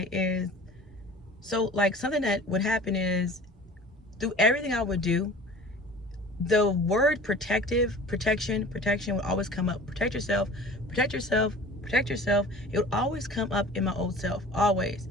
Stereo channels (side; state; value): both; normal; correlation 0.42